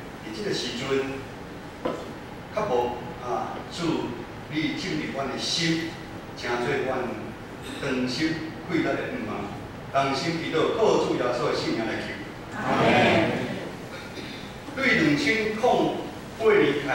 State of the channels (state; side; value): identical; both; correlation 1.00